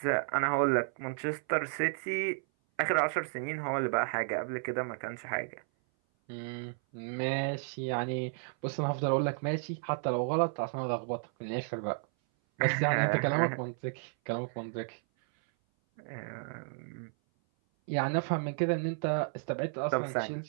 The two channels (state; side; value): silent; left; 56 dB below the other